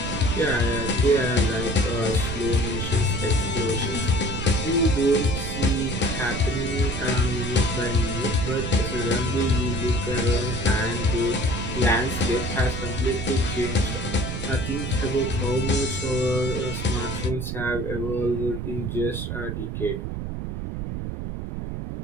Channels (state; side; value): noise; right; rumble, 5 dB below the sound